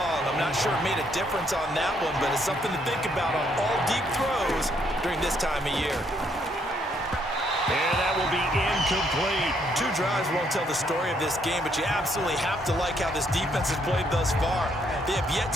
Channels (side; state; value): both; normal; correlation 0.71